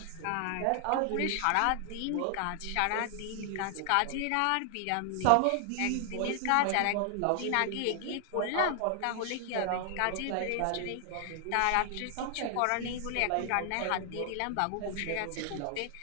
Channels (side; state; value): both; different; correlation 0.00